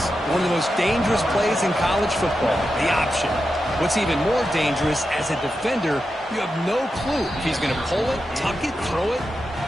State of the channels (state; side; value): normal; both; correlation 0.89